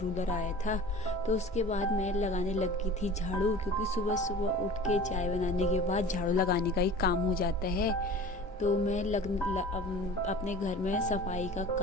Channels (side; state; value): both; normal; correlation 0.40